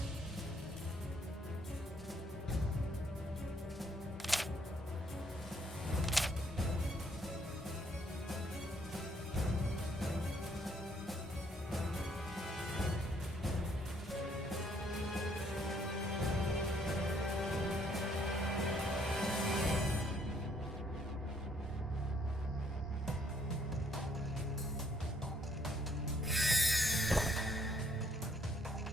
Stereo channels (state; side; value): normal; both; correlation 0.67